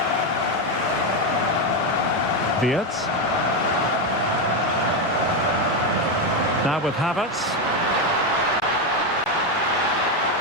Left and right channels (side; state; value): both; normal; correlation 0.09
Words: Wirtz. Now with Havertz.